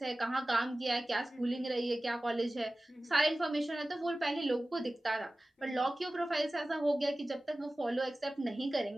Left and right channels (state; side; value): normal; both; correlation 0.97